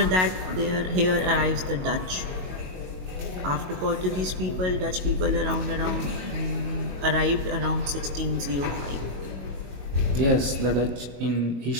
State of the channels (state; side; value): late; left; 22 ms